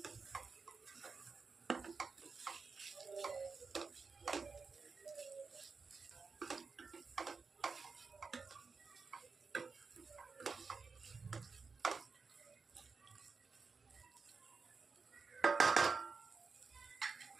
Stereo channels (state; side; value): quieter; left; 4.8 dB